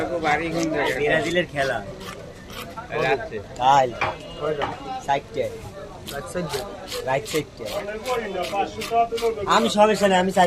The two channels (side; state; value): both; identical; correlation 1.00